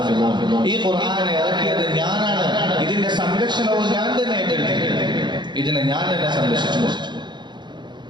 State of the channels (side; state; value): left; late; 0.22 ms